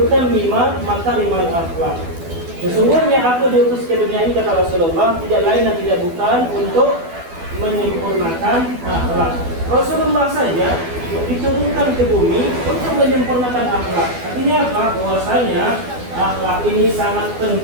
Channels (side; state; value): left; late; 12 ms